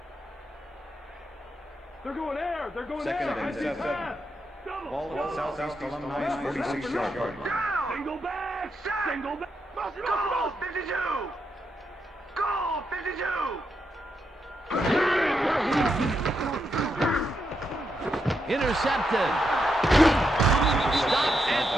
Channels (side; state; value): both; normal; correlation 0.82